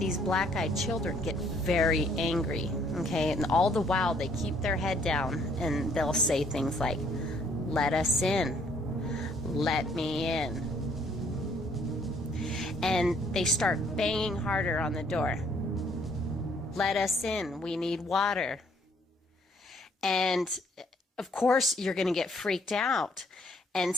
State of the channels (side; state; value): both; normal; correlation 0.64